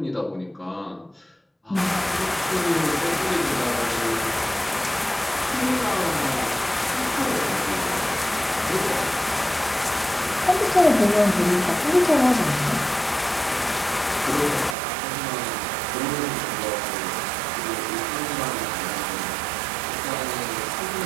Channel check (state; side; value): drops out; left; at 14.8 s